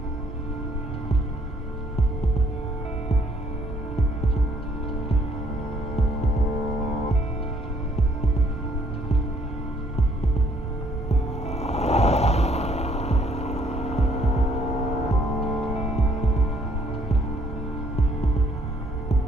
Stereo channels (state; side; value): normal; both; correlation 0.64